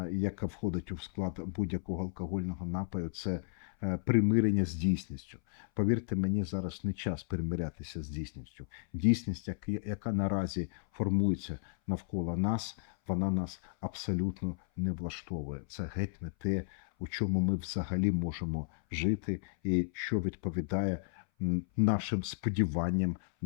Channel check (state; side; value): silent; right; 55 dB below the other